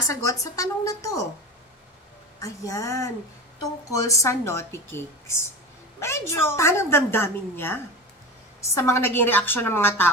sa tanong na to. Ayan, tungkol sa naughty cakes. Medyo tanang damdamin niya sa mga naging reaksyon ng mga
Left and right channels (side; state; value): both; normal; correlation 0.28